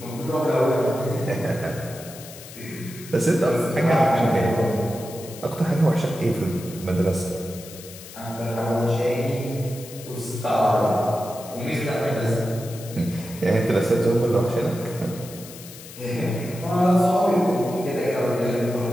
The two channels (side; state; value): left; noise; hiss, 16 dB below the sound